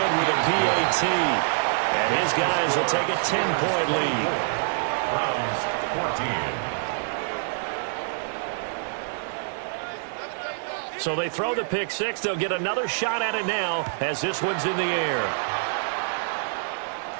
with a PAT. And his guys will take a 10-point lead. Browns 14. So they throw the pick 6. They'll get another shot at it now as this one's in the air.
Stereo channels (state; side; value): silent; left; digital silence